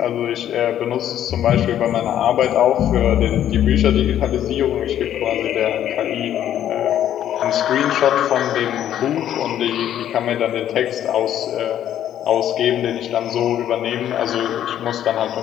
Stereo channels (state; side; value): quieter; right; 11.0 dB